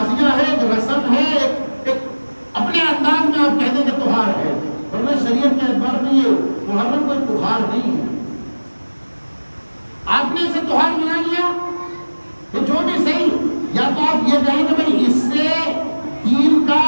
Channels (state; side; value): inverted; both; correlation -1.00